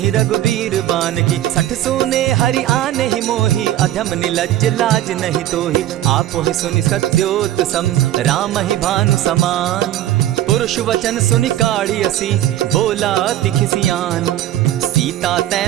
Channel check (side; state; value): left; quieter; 13.2 dB